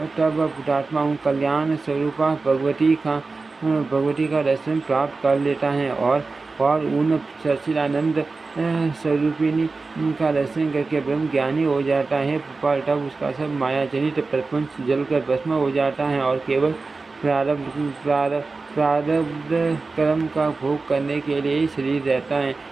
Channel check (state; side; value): quieter; left; 3.9 dB